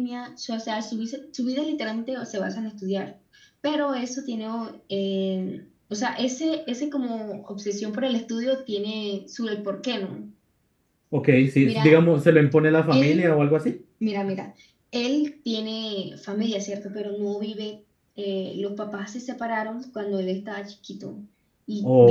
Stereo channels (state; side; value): identical; both; correlation 1.00